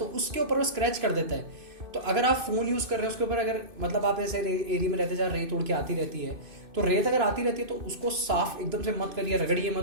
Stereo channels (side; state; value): left; late; 2.5 ms